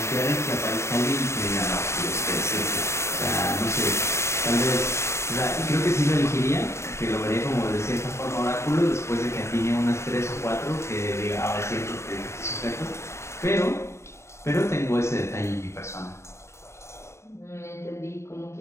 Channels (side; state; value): right; late; 0.13 ms